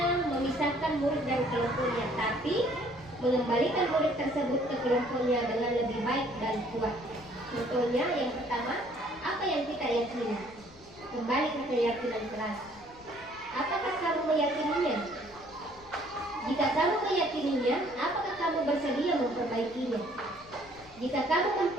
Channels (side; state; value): left; noise; rumble, 24 dB below the sound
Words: memisahkan murid dari kelompoknya, tapi mengembalikan murid tersebut ke kelompoknya dengan lebih baik dan kuat. Contohnya, yang pertama, apa yang kita yakini? Kembali ke keyakinan kelas. Apakah kamu meyakininya? Jika kamu meyakininya, apakah kamu bersedia memperbaikinya? Jika kamu